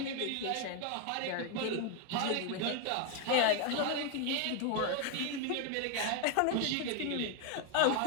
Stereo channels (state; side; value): different; both; correlation 0.01